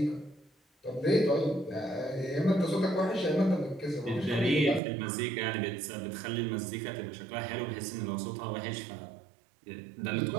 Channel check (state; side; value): drops out; left; at 4.8 s